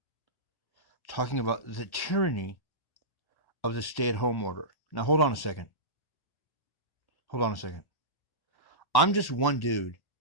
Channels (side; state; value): right; late; 1.1 ms